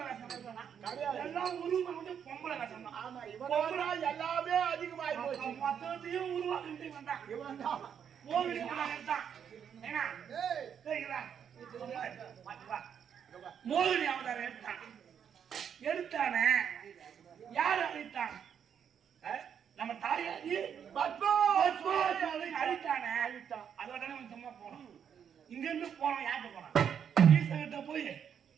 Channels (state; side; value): quieter; left; 8.1 dB